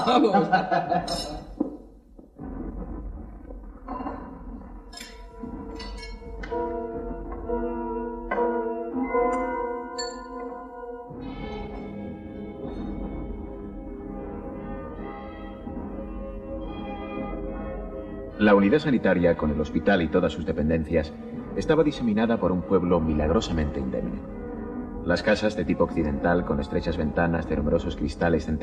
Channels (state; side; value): identical; both; correlation 1.00